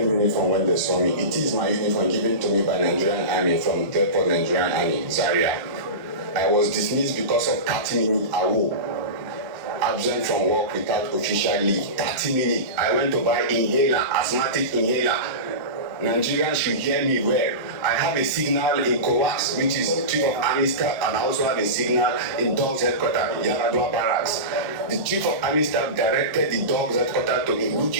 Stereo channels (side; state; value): left; late; 1.1 ms